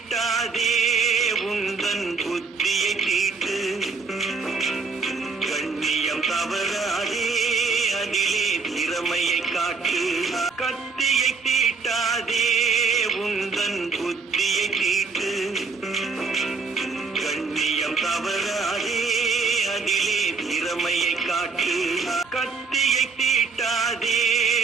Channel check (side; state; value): left; quieter; 4.7 dB